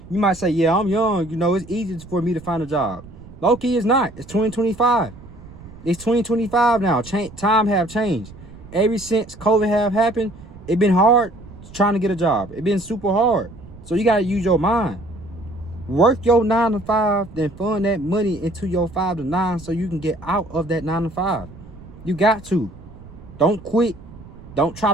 You might say, yeah, I'm young. You know, it's easy for me to find a job. Low-key, it's not. It's 2025. It's 2025 now. Time have changed. Ever since COVID have happened, it been hard trying to get a job. It been super hard. So you got to use your mind. Work your 9 to 5, then fund that money into your 5 to 9 so you can get out of that 9 to 5. You got to. Don't quit. Don't try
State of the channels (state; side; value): noise; right; rumble, 18 dB below the sound